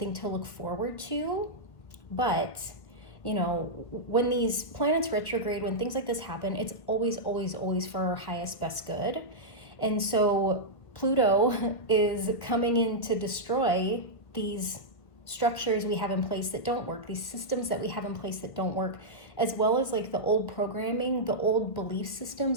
to look forward to. But, when these planets retrograde, when things like this happen, it's always, always, always for our highest, best good. And so Pluto is coming in to destroy these structures we have in place that don't work, these systems that we have in place that don't work, as well as like the old programming, the old belief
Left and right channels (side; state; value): right; late; 1.4 ms